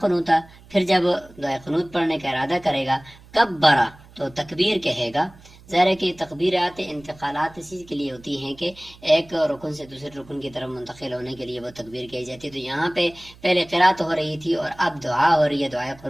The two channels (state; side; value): noise; right; hum, 23 dB below the sound